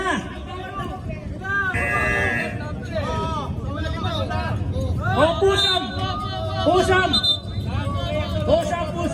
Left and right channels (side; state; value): both; identical; correlation 1.00